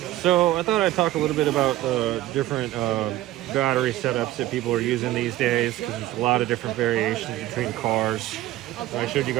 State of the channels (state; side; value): quieter; left; 15.7 dB